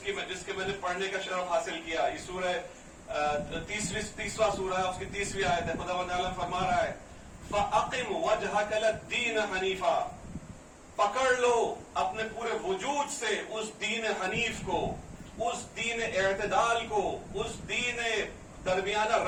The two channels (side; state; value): both; identical; correlation 1.00